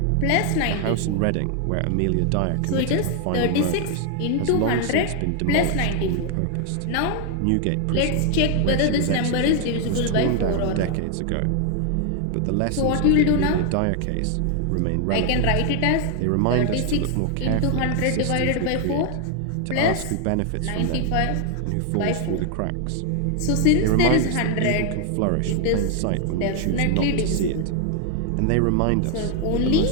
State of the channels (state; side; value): different; both; correlation 0.00